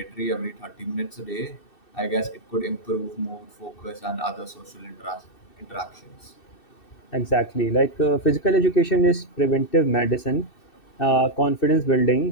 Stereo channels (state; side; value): late; right; 2.6 ms